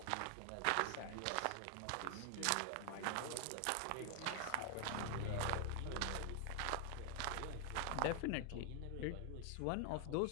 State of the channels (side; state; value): both; different; correlation 0.00